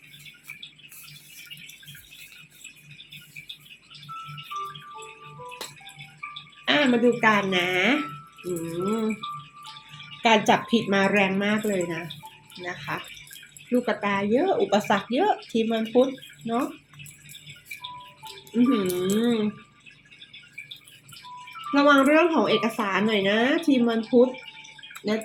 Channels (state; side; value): identical; both; correlation 1.00